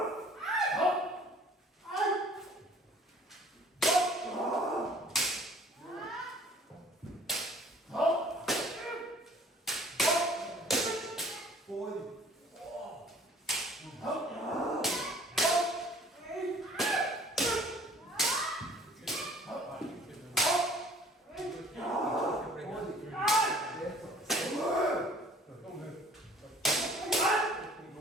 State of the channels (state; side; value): normal; both; correlation 0.52